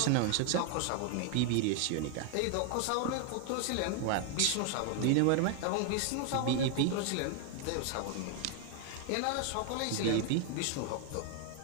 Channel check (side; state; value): both; different; correlation 0.00